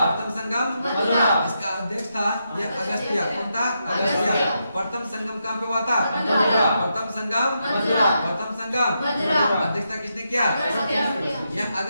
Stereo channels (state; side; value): inverted; both; correlation -0.83